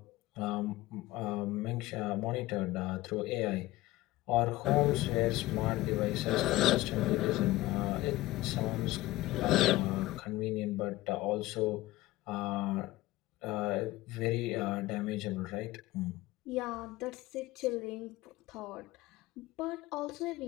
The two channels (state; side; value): quieter; right; 18.0 dB